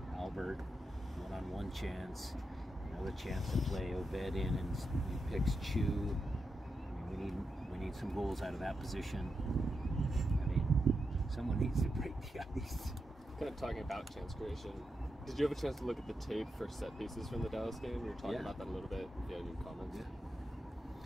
Albert, one-on-one chance, another chance to play Obed in, and he picks Chu. I mean, we need some goals out of that position. I mean, someone needs to break the ice. Kind of talking about chance creation. Did you have a chance to look at the tape for set pieces from the Dallas game? We were talking about that a little bit. If you had any comments. Yeah.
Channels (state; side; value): normal; both; correlation 0.87